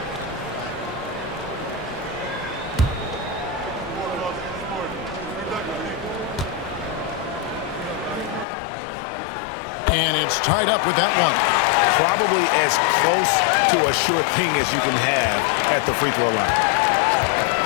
And it's tied up with that one. Probably as close to a sure thing as you can have at the free throw line.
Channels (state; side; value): drops out; right; at 8.5 s